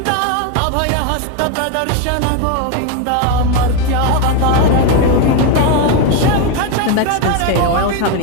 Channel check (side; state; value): both; different; correlation 0.02